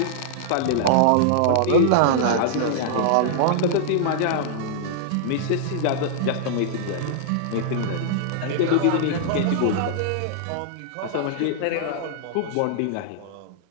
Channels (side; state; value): both; different; correlation -0.01